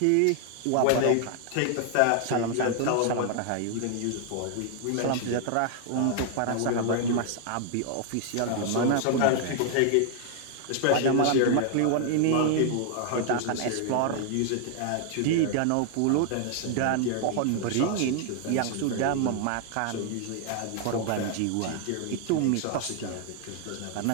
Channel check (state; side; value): different; both; correlation 0.00